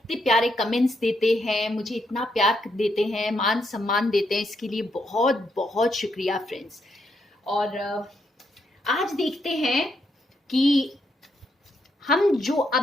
प्यारे कमेंट्स देते हैं, मुझे इतना प्यार देते हैं, मान सम्मान देते हैं, इसके लिए बहुत बहुत शुक्रिया फ्रेंड्स। और आज देखते हैं कि हम जो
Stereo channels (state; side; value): normal; both; correlation 0.78